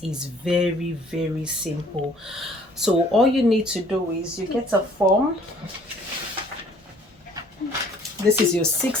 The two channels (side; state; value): both; normal; correlation 0.57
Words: is very, very simple. So all you need to do is you get a form. This is your